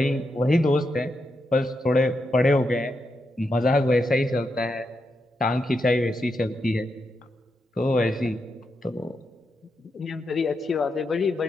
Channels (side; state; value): both; normal; correlation 0.84